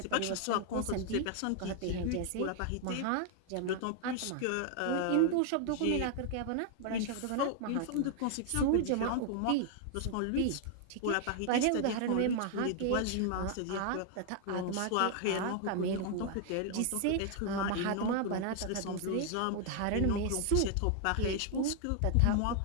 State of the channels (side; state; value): both; different; correlation 0.00